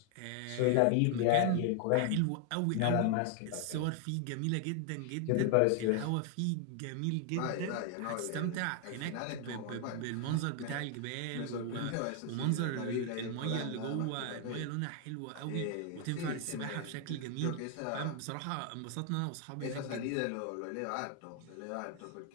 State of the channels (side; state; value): both; different; correlation 0.00